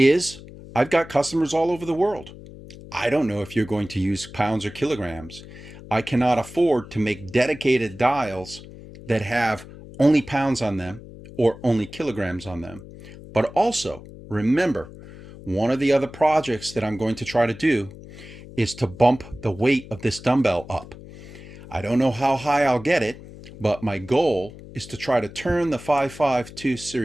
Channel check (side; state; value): left; noise; hum, 17 dB below the sound